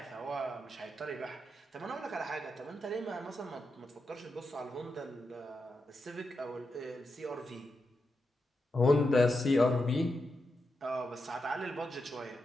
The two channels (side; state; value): both; normal; correlation 0.87